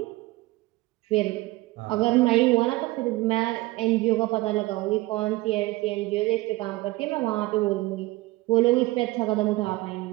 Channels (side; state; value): left; quieter; 20.1 dB